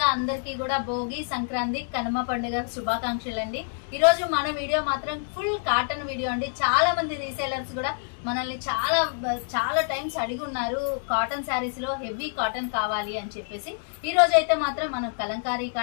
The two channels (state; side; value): silent; right; digital silence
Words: అందరికీ కూడా భోగి, సంక్రాంతి, కనుమ పండుగ శుభాకాంక్షలు అండి. ఈ రోజు మన వీడియో మాత్రం ఫుల్ కాటన్ వీడియో అండి. చాలా మంది రీసేలర్స్ కూడా మనల్ని చాలా టైమ్స్ అడిగి ఉన్నారు కాటన్ శారీస్ లో హెవీ కాటన్ కావాలి అని చెప్పేసి. ఈ రోజు అయితే మాత్రం మనం కలంకారీ